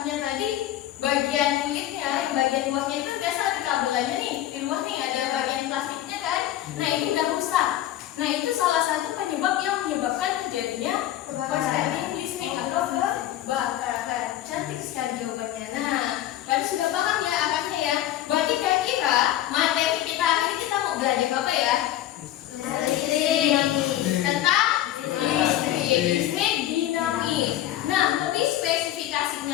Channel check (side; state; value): right; quieter; 13.0 dB